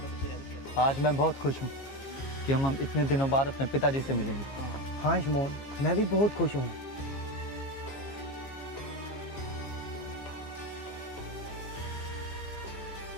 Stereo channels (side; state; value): right; late; 15 ms